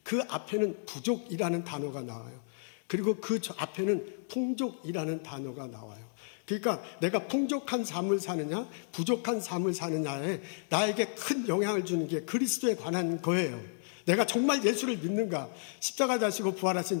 그 앞에는 부족이라는 단어가 나와요. 그리고 그 앞에는 풍족이라는 단어가 나와요. 그러니까 내가 풍족한 삶을 사느냐 부족한 삶을 사느냐에 나에게 큰 영향을 주는 게 그리스도에 관한 거예요. 내가 정말 예수를 믿는가, 십자가 자시고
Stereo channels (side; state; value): right; silent; digital silence